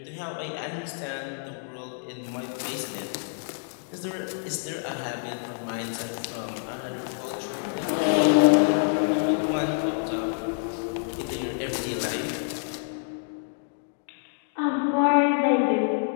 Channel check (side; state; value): right; silent; digital silence